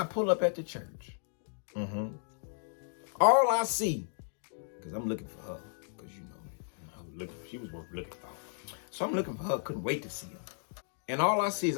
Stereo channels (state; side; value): silent; right; digital silence